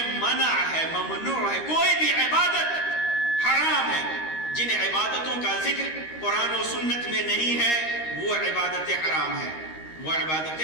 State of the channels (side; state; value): right; late; 13 ms